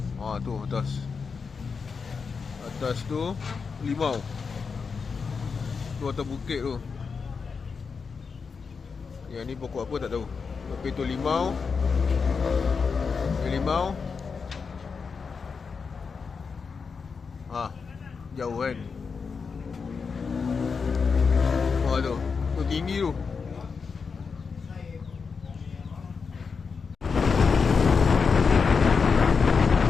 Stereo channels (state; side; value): quieter; right; 5.4 dB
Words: Tu atas. Atas tu limau. Tu atas bukit tu. Yang ni pokok apa tak tahu. Tapi tu limau. Limau. Jauh kan. Tu. Tu tinggi tu.